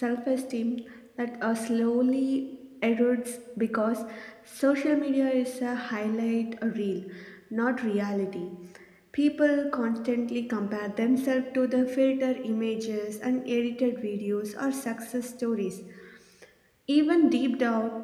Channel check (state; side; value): identical; both; correlation 1.00